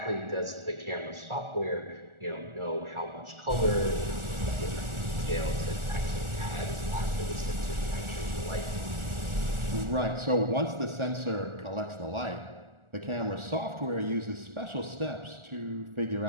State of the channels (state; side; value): late; left; 1.4 ms